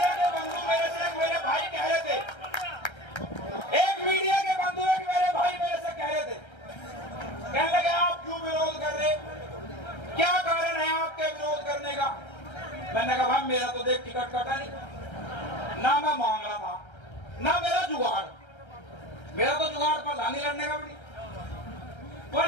के बंधु मेरे से मेरे भाई कह रहे थे, एक मीडिया के बंधु एक मेरे भाई मेरे से कह रहे थे, कहने लगे आप क्यों विरोध कर रहे, क्या कारण है आपके विरोध करने का। मैंने कहा भाई मेरा तो देख टिकट कटा नहीं, ना मैं मांग रहा था, ना मेरा जुगाड़, मेरा तो जुगाड़ पर लानी लड़ने का भी नहीं। पर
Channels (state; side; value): late; right; 1.3 ms